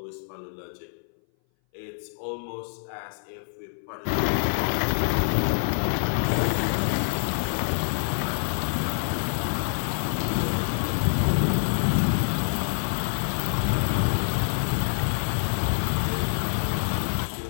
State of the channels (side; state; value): right; silent; 59 dB below the other